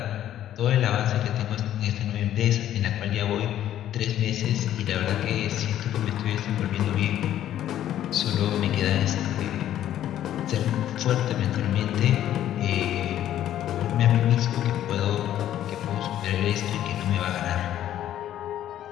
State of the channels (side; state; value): right; quieter; 11.8 dB